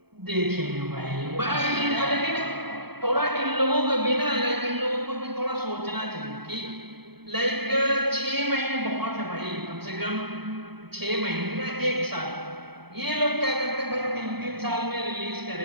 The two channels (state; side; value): late; left; 0.97 ms